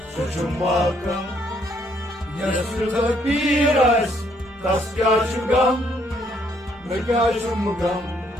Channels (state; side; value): normal; both; correlation 0.69